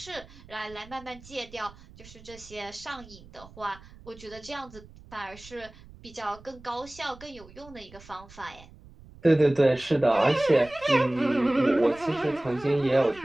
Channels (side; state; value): right; noise; rumble, 21 dB below the sound